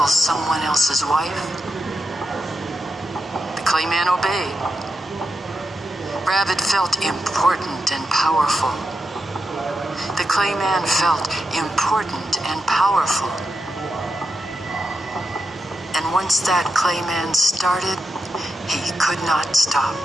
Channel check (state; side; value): normal; both; correlation 0.87